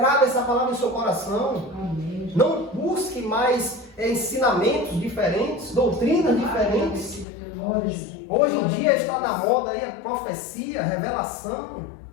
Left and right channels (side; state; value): right; drops out; at 7.2 s